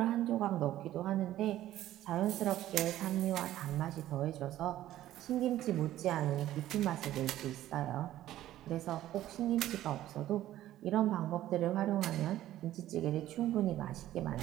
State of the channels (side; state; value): left; quieter; 13.7 dB